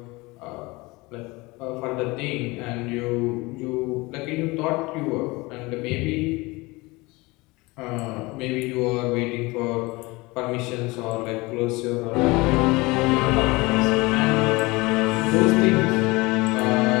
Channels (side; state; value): right; quieter; 23.3 dB